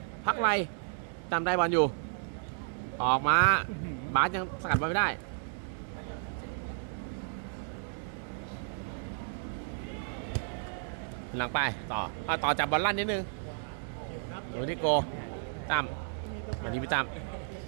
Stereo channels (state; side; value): silent; left; digital silence